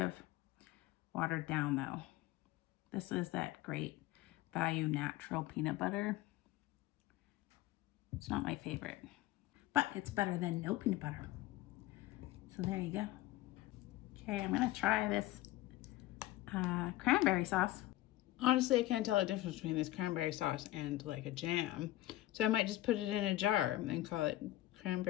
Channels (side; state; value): right; quieter; 16.3 dB